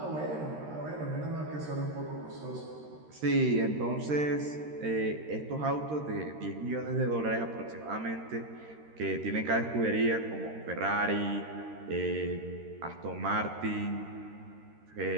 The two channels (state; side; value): late; left; 13 ms